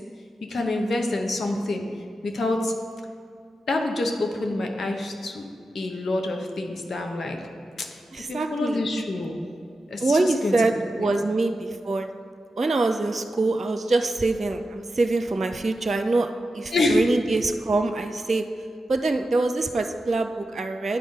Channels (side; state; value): both; normal; correlation 0.90